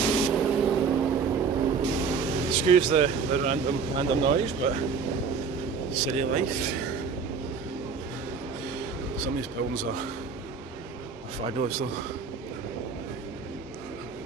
Excuse the random noise, but city life. Some of these buildings are fabulous though.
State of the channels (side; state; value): left; quieter; 5.5 dB